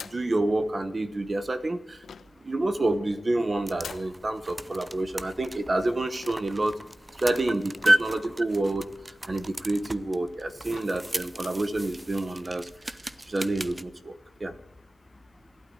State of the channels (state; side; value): normal; both; correlation 0.97